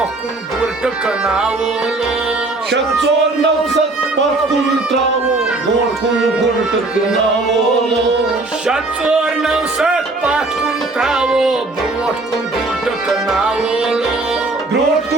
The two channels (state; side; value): quieter; left; 3.1 dB